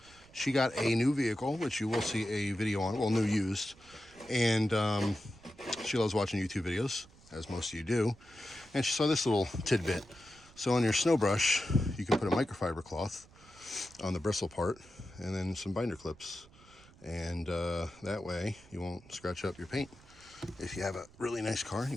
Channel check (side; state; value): right; noise; rumble, 24 dB below the sound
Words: She got a new vehicle, which you will see a video on, well, new used. And she loves watching YouTube videos, as most of you do. And she saw this little tidbit. So on your snow brush, you can put a microfiber cloth on the bristle part and then some binder clips. And that way you won't scratch up your paint if you have a really nice car and